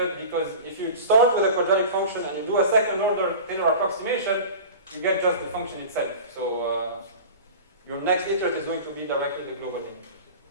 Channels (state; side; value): inverted; both; correlation -0.35